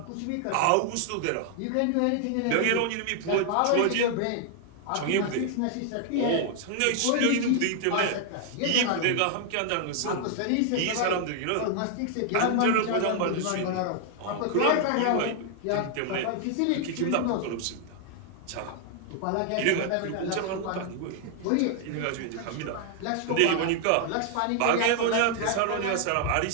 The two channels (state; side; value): different; both; correlation 0.00